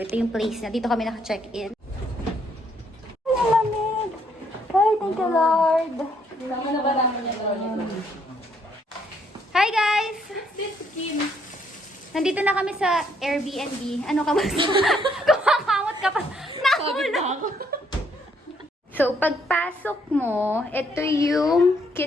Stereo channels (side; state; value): both; normal; correlation 0.70